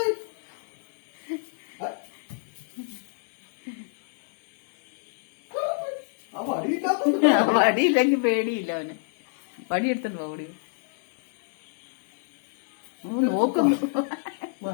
വടിയില്ലെങ്കിൽ പേടിയില്ല അവന്. വടി എടുത്തിട്ട് ഓടി നോക്കുന്നു.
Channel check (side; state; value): right; silent; digital silence